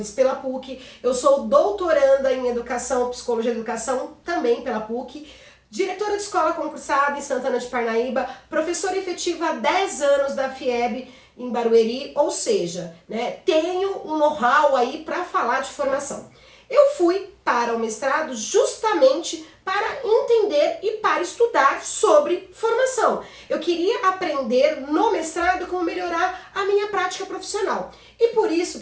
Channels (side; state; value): both; identical; correlation 1.00